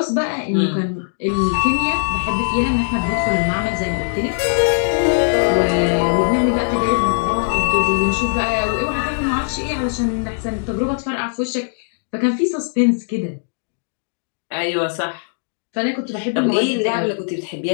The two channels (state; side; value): silent; right; digital silence